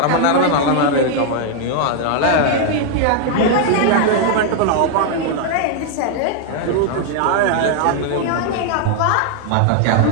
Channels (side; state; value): both; different; correlation 0.00